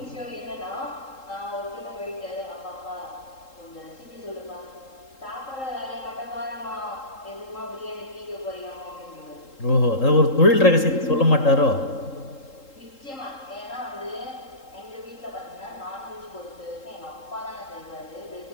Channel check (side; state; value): right; late; 3.8 ms